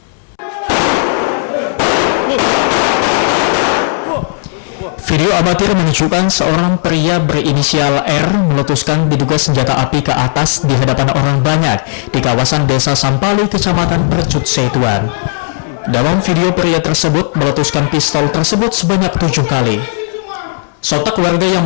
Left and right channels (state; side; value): silent; right; digital silence